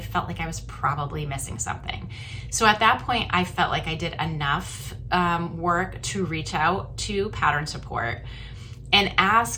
like I was probably missing something. So at that point, I felt like I did enough work to reach out to pattern support and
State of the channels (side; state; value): both; identical; correlation 1.00